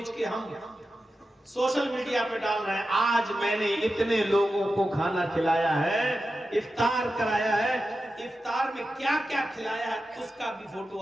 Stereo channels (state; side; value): normal; both; correlation 0.92